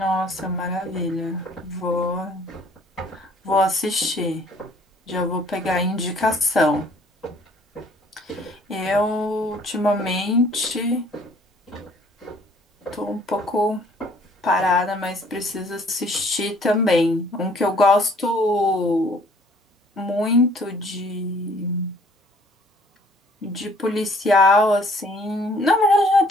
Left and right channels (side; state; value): both; normal; correlation 0.58